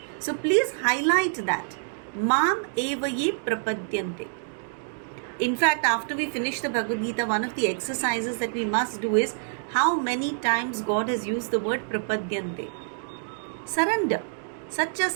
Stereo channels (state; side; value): silent; left; digital silence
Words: So please highlight that. Mam evaye prapadyante. In fact, after we finish the Bhagavad Gita, one of the exercises that we must do is how many times God has used the word prapadyante. Surrender. Such a